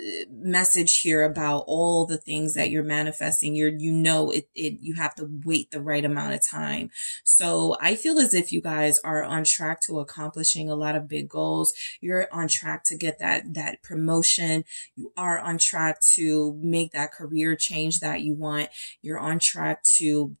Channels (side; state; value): both; inverted; correlation -1.00